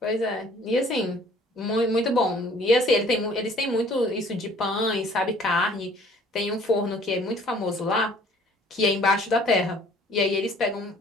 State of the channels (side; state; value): both; normal; correlation 0.55